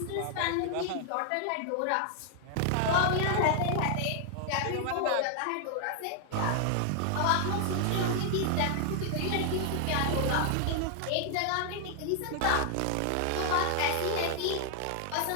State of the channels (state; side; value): different; both; correlation 0.00